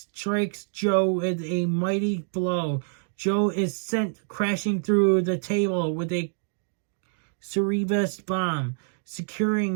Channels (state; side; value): silent; left; digital silence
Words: Joe with a mighty blow. Joe is sent crashing through the table with a Cerebus bomb,